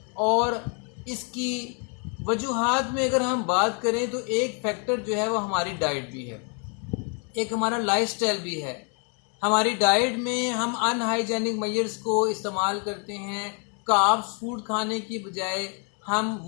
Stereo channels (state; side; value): quieter; right; 38.8 dB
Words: और इसकी वजूहात में अगर हम बात करें तो एक फैक्टर जो है वो हमारी डाइट भी है, एक हमारा लाइफस्टाइल भी है। हमारी डाइट में हम अनहाइजेनिक मेजर्स को इस्तेमाल करते हैं। कार्ब्स फूड खाने की बजाय हम